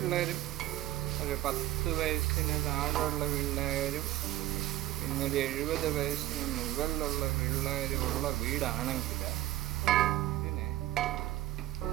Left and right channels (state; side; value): quieter; left; 14.8 dB